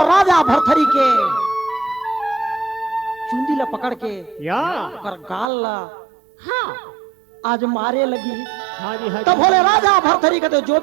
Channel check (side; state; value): left; drops out; at 5.5 s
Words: राजा भरथरी के चुंदी ला पकड़ के या कर गाल ला हाँ आज मारे लगी। हाँ जी हाँ तब जी। बोले राजा भरथरी का तो जो